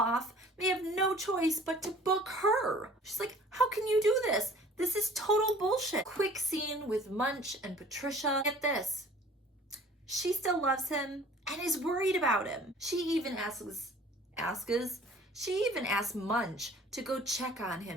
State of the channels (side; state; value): both; normal; correlation 0.50